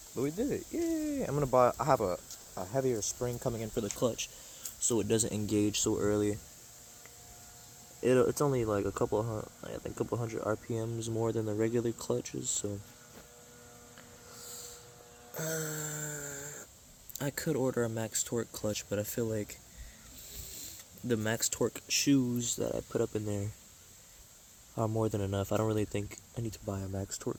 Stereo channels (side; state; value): both; identical; correlation 1.00